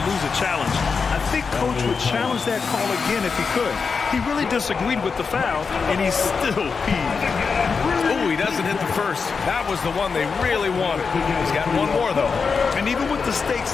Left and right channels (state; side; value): quieter; right; 5.3 dB